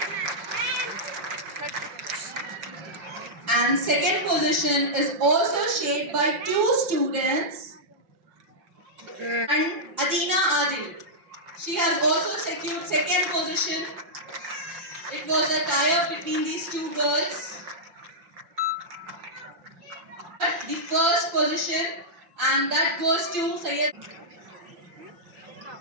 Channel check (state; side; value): late; left; 5.5 ms